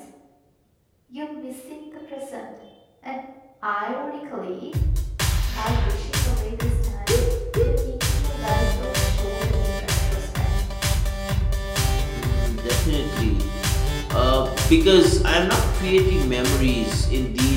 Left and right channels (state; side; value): identical; both; correlation 1.00